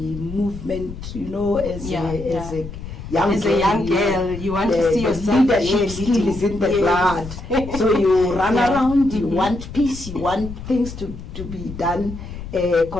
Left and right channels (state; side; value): noise; left; rumble, 11 dB below the sound